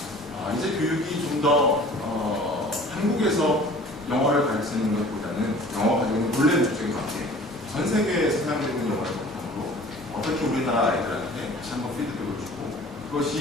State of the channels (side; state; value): both; normal; correlation 0.46